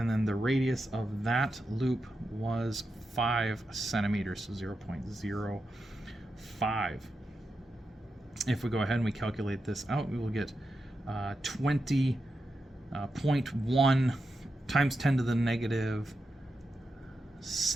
then the radius of that loop was 5 centimeters, so 0.05. If we go ahead and we calculate this out, we will get 20.1 times 10 to the negative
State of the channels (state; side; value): normal; both; correlation 0.88